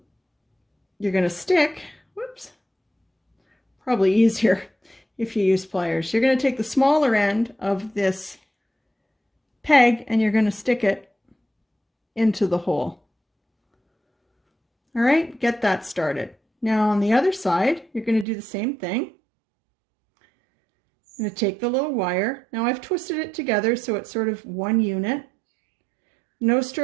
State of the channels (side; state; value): left; drops out; at 18.2 s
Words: going to stick, whoops, probably easier if you use pliers. You're going to take the smaller end of this peg and you're going to stick it into the hole. All right, get that started. Now on the other side, you're going to do the same thing. I'm going to take the little wire. Now I've twisted it together so it's sort of one unit. No